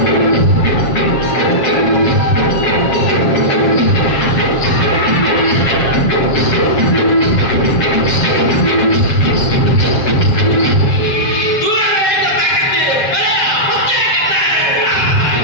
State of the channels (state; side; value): late; right; 7.4 ms